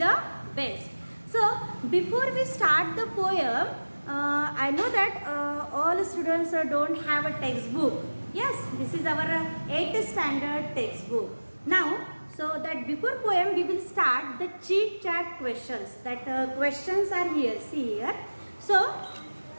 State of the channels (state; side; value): inverted; both; correlation -1.00